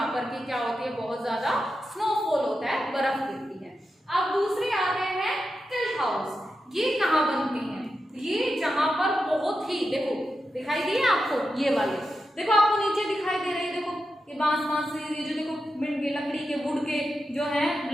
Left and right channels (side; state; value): both; normal; correlation 0.89